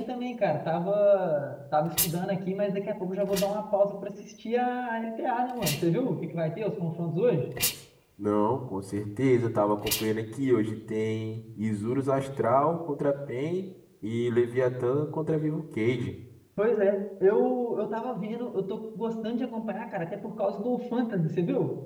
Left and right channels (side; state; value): both; identical; correlation 1.00